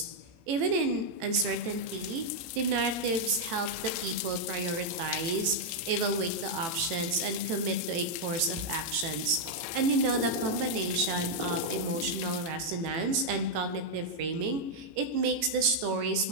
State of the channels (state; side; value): late; left; 18 ms